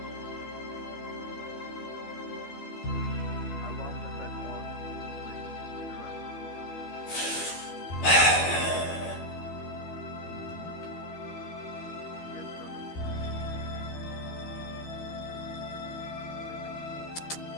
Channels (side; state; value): right; late; 12 ms